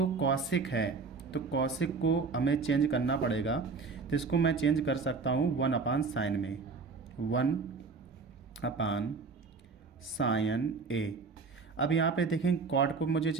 कॉसिक है, तो कॉसिक को हमें चेंज करना पड़ेगा। तो इसको मैं चेंज कर सकता हूँ 1 अपान साइन में, 1 अपान साइन ए। अब यहाँ पे देखें, कॉट को मुझे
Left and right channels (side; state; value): left; quieter; 4.6 dB